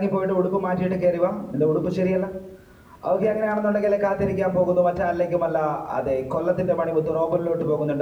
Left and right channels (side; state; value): both; identical; correlation 1.00